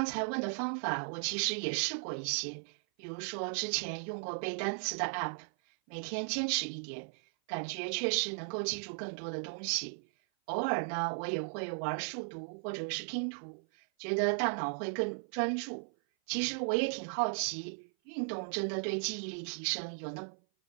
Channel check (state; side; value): silent; left; 54 dB below the other